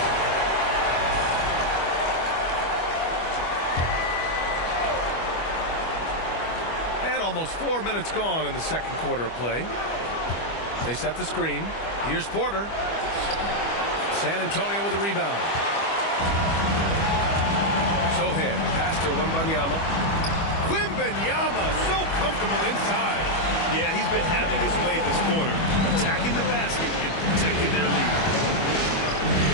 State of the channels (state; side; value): late; right; 25 ms